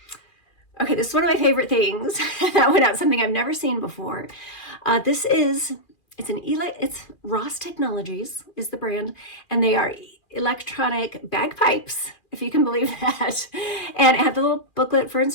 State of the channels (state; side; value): late; right; 2.4 ms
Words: Okay, this is one of my favorite things that went out, something I've never seen before. It's Ross Technologies is the brand, and they are electronic bagpipes, if you can believe that. And it had the little booklet for